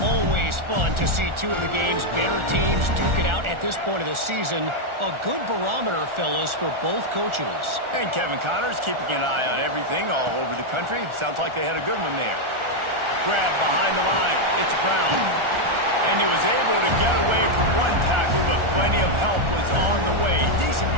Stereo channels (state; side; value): late; left; 1.4 ms